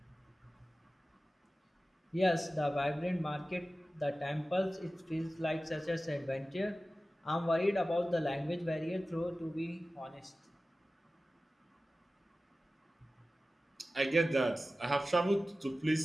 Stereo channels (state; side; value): normal; both; correlation 0.96